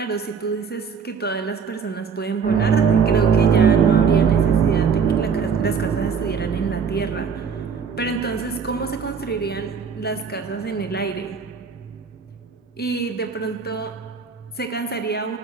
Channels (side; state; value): left; quieter; 6.2 dB